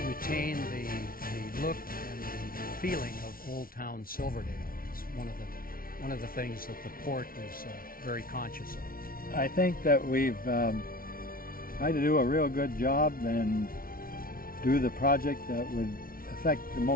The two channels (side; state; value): right; late; 0.43 ms